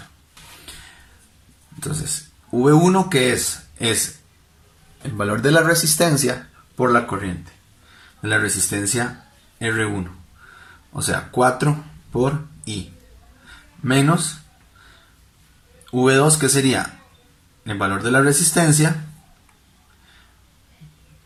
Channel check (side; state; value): both; identical; correlation 1.00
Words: Entonces, V1, ¿qué es? Es el valor de la resistencia por la corriente. De la resistencia R1. O sea, 4 por I. Menos V2, que sería el valor de la resistencia